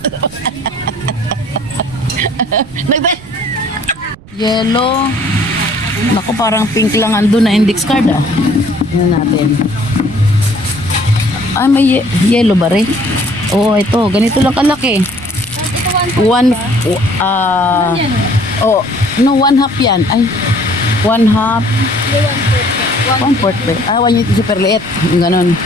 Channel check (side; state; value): right; noise; rumble, 21 dB below the sound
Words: Nagbe- Yellow. Naku, parang pink lang andun na index card ah. Tingnan natin. Ay, may yellow ba rin? Oo, ito. Ganito lang kalaki. One, oh, no, 1/2 yan. Ay, 1/2. 1/4 ba? Ah, 1 yung super liit. Yung ganun.